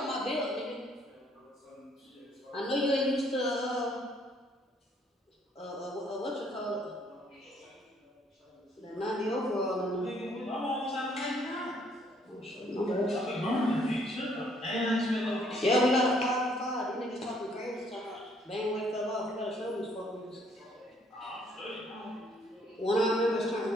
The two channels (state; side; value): normal; both; correlation 0.65